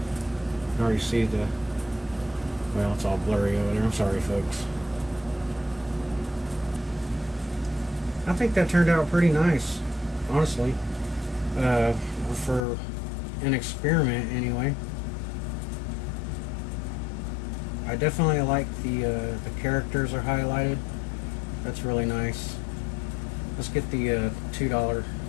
You already see the, well, it's all blurry over there. I'm sorry, folks. I think that turned out pretty nice, honestly, for an experiment anyway. I definitely like the characters are highlighted. That's really nice. Let's get the $2.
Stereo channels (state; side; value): drops out; right; at 12.7 s